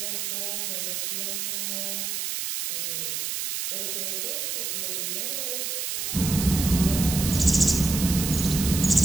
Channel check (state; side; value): noise; right; hiss, 2 dB below the sound